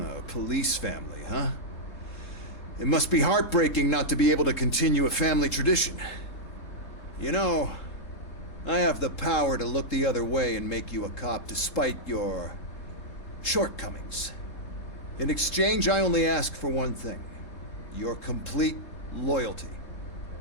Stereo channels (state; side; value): late; right; 3.7 ms